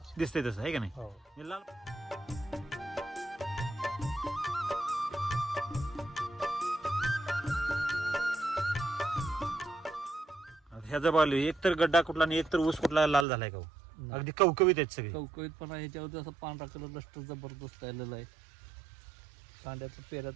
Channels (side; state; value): left; drops out; at 13.2 s